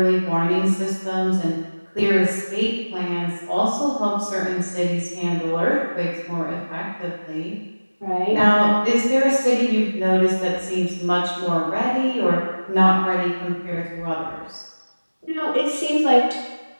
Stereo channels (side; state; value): both; inverted; correlation -1.00